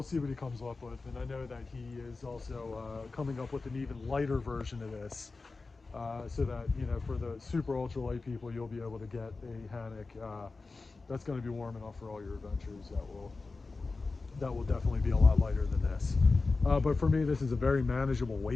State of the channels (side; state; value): right; quieter; 3.8 dB